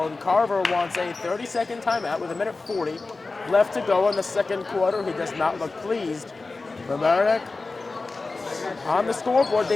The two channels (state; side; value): quieter; right; 3.7 dB